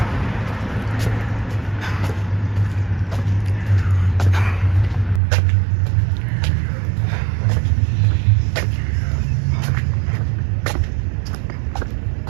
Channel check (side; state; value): left; drops out; at 5.2 s